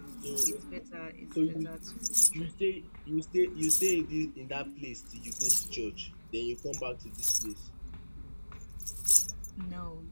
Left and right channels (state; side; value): inverted; both; correlation -1.00